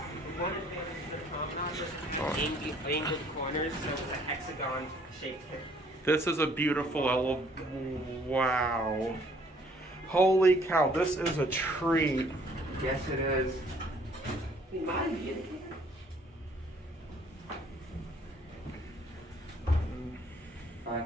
to the promenade was angled corners, so it's a hexagon shaped hip. This is a beautiful wow. Holy cow, this is a treat. Yes, it is. I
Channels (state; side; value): normal; both; correlation 0.60